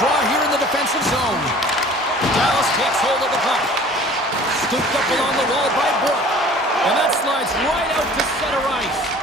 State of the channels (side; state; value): both; normal; correlation 0.47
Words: here in the defensive zone. Dallas takes hold of the puck. Scooped up along the wall by Brooke. And that slides right out to center ice.